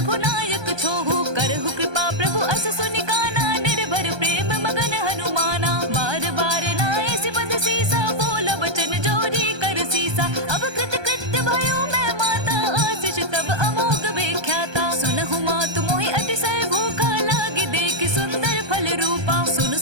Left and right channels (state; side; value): late; left; 1.2 ms